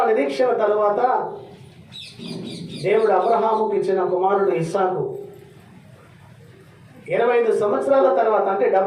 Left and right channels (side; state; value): both; identical; correlation 1.00